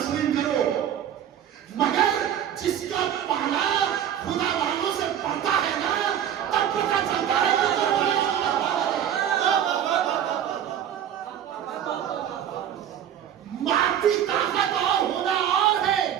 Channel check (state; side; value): quieter; left; 9.9 dB